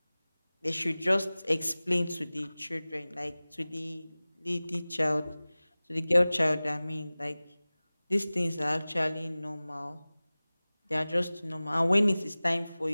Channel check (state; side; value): inverted; both; correlation -0.99